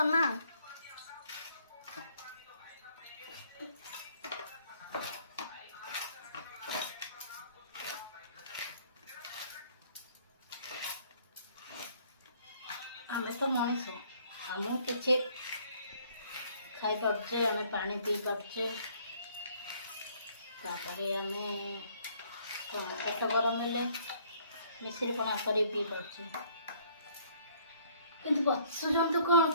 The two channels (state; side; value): inverted; both; correlation -0.61